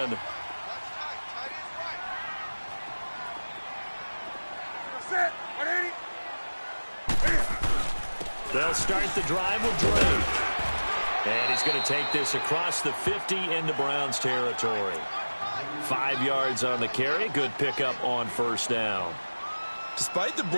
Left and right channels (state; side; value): inverted; both; correlation -1.00